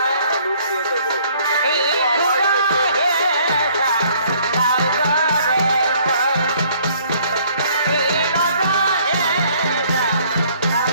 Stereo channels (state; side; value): inverted; both; correlation -0.60